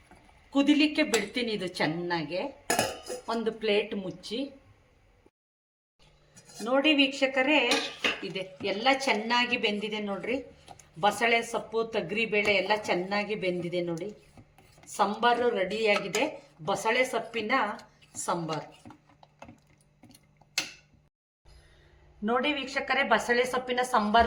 ಕುದಿಲಿಕ್ಕೆ ಬಿಡ್ತೀನಿ. ಇದು ಚೆನ್ನಾಗೆ ಒಂದು ಪ್ಲೇಟ್ ಮುಚ್ಚಿ ನೋಡಿ ವೀಕ್ಷಕರೇ, ಇದೆ ಎಲ್ಲ ಚೆನ್ನಾಗಿ ಬೆಂದಿದೆ ನೋಡ್ರಿ. ಬಸಳೆ ಸೊಪ್ಪು, ತೊಗರಿಬೇಳೆ ಎಲ್ಲ ಚೆನ್ನಾಗಿ ಬೆಂದಿದೆ ನೋಡಿ. ಸಾಂಬಾರು ರೆಡಿಯಾಗಿದೆ, ಬಸಳೆ ಸೊಪ್ಪಿನ ಸಾಂಬಾರು ನೋಡಿ ವೀಕ್ಷಕರೇ. ಬಸಳೆ ಸೊಪ್ಪಿನ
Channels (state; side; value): identical; both; correlation 1.00